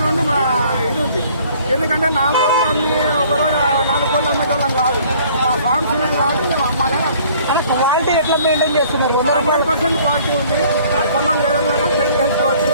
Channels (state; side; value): inverted; both; correlation -0.56